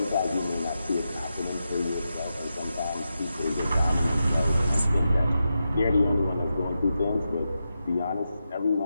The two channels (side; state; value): both; inverted; correlation -0.88